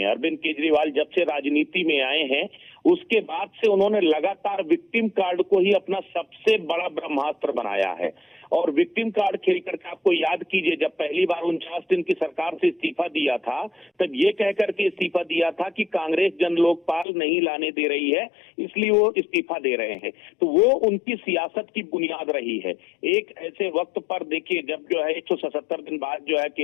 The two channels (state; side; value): drops out; right; at 17.1 s